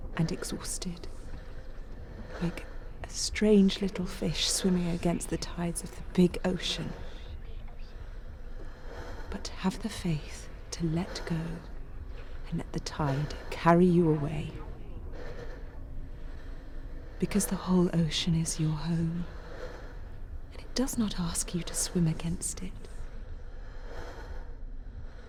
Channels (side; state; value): both; identical; correlation 1.00